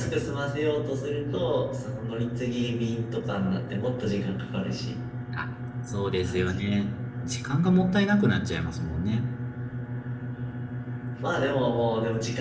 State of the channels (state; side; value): identical; both; correlation 1.00